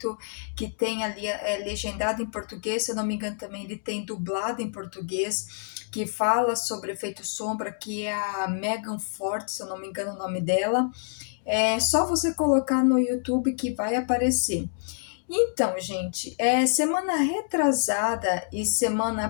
que tem ali legendado em português. Se eu não me engano, também ele tem dublado em português, que fala sobre o efeito sombra, que é a Megan Ford, se eu não me engano o nome dela. É só você colocar no YouTube que vai aparecer. Então, gente, semana retrasada e semana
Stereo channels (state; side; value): silent; right; digital silence